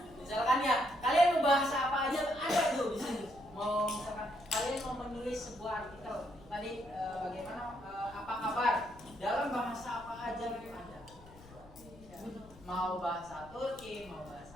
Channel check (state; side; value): noise; left; rumble, 21 dB below the sound